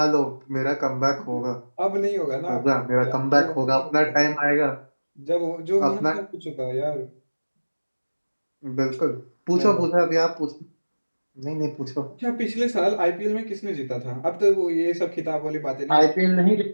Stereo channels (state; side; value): inverted; both; correlation -1.00